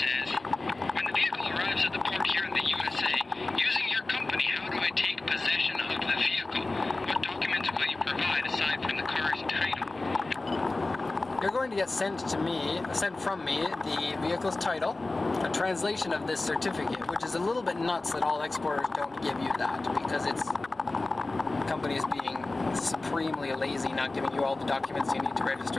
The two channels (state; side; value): quieter; right; 3.2 dB